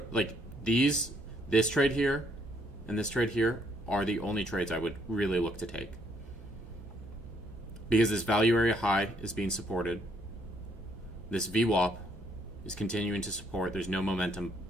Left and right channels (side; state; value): both; normal; correlation 0.69